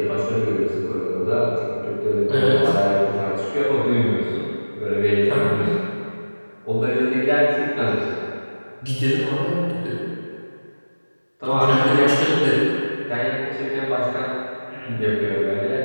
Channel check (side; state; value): both; inverted; correlation -1.00